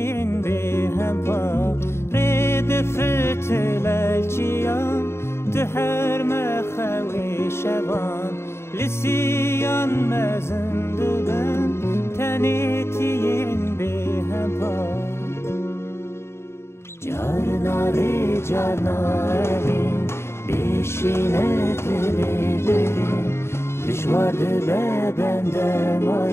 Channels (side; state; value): right; late; 0.12 ms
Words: به هم پا رید فتلالچیان ده هر مخوی شبان لسیان مزنده بن تنیتین به هم پا Carnari carnari Bişine dilerim Düşvardı be benden